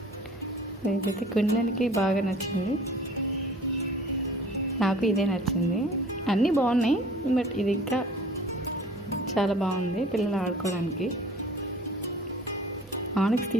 ఇదైతే క్విన్లాండ్కి బాగా నచ్చింది. నాకు ఇదే నచ్చింది. అన్నీ బాగున్నాయి, బట్ ఇది ఇంకా చాలా బాగుంది పిల్లలు ఆడుకోవడానికి. ఆనెక్స్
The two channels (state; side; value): normal; both; correlation 0.48